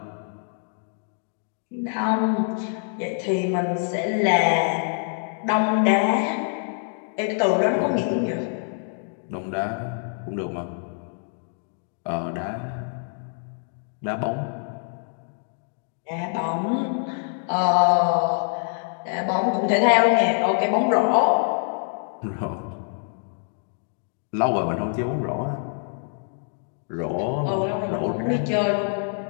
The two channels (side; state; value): right; silent; 57 dB below the other